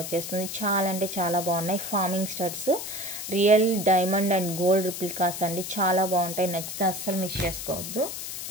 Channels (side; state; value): left; noise; hiss, 7 dB below the sound